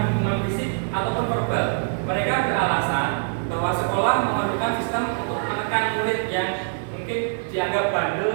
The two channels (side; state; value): left; silent; digital silence